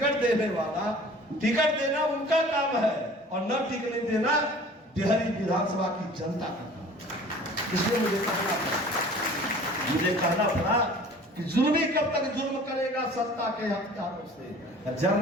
देने वाला, टिकट देना उनका काम है और न टिकट देना बिहारी विधानसभा की जनता का काम। इसलिए मुझे कहना पड़ा कि जुल्मी कब तक जुल्म करेगा सत्ता के हथियारों से।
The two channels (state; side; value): normal; both; correlation 0.46